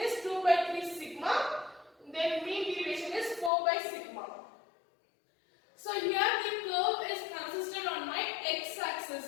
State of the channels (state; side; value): drops out; right; at 3.5 s